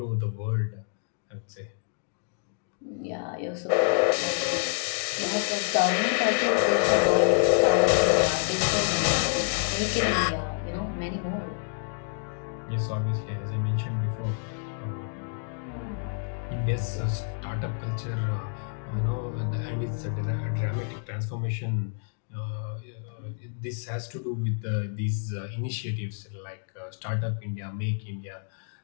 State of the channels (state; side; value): silent; right; digital silence